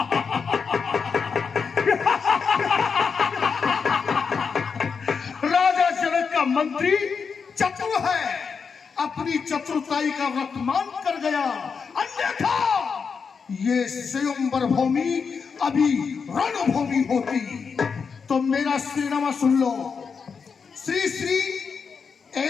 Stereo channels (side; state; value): right; quieter; 5.8 dB